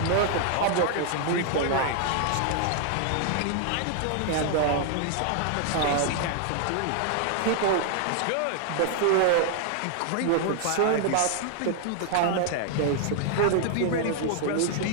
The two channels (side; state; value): both; different; correlation 0.00